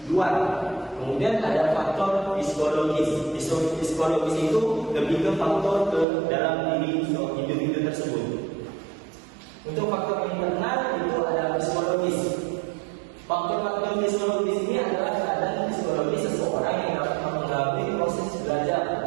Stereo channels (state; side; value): drops out; left; at 6.1 s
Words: luar. Kemudian ada faktor psikologis. Psikologis itu lebih ke faktor ke dalam diri individu tersebut. Untuk faktor internal itu ada psikologis. Faktor-faktor psikologis ini adalah keadaan psikologis seseorang yang dapat mempengaruhi proses belajar.